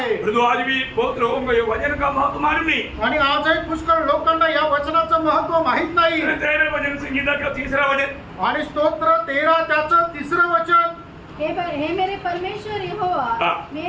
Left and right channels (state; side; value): identical; both; correlation 1.00